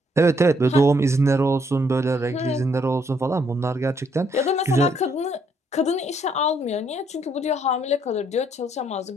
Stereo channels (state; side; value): normal; both; correlation 0.70